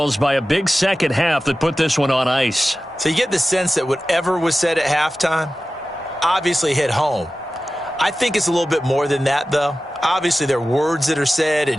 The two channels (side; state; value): both; normal; correlation 0.95